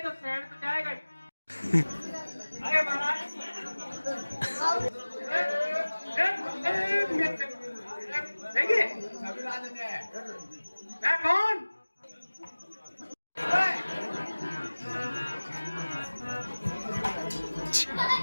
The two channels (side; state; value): both; inverted; correlation -1.00